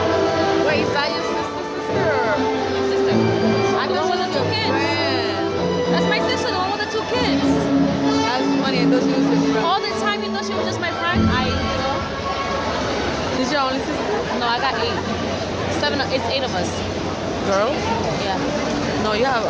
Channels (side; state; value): both; identical; correlation 1.00